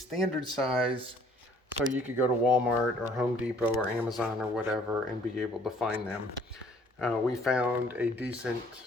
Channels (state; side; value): normal; both; correlation 0.59